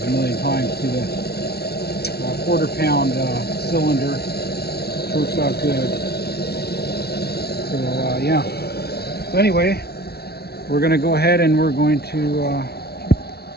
a million times, to the quarter-pound cylinder, which works out good. So yeah. So anyway, we're going to go ahead and we're going to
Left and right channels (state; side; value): late; right; 0.46 ms